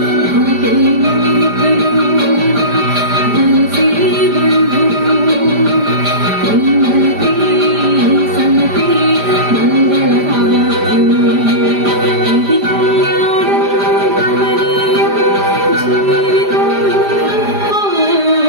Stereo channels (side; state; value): left; late; 5.0 ms